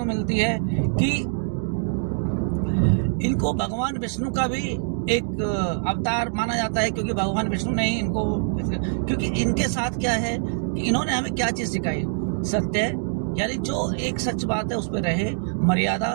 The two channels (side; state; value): left; silent; digital silence